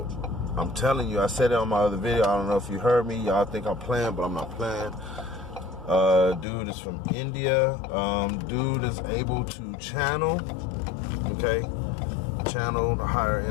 I'm telling you, I said it on my other video. I don't know if you heard me. Y'all think I'm playing, but I'm not playing. Dude is from India. Dude is able to channel, okay? Channel the higher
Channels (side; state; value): right; drops out; at 6.5 s